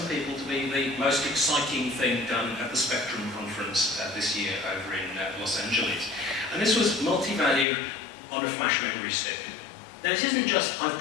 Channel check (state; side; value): drops out; right; at 7.7 s